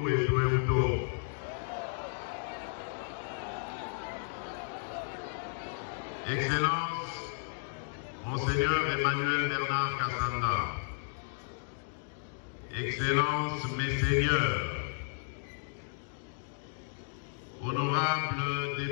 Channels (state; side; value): silent; right; digital silence